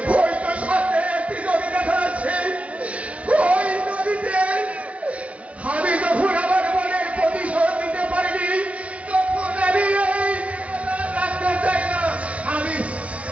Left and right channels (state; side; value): late; left; 0.064 ms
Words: সাথে একটি নদী দেখা যাচ্ছে ওই নদীতে আমি যখন আমার মনের প্রতিশোধ নিতে পারিনি তখন আমি রাখতে চাই না